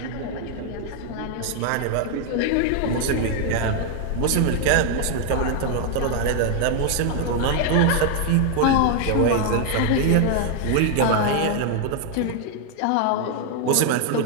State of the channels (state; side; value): different; both; correlation 0.00